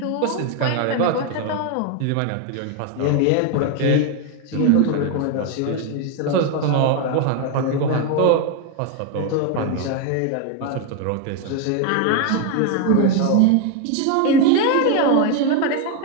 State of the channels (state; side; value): different; both; correlation 0.01